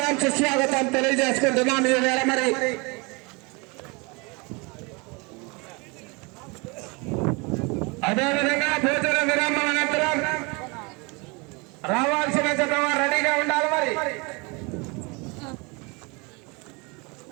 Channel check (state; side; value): quieter; left; 28.6 dB